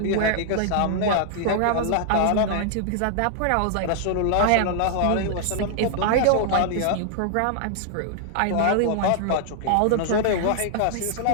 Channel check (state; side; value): different; both; correlation -0.01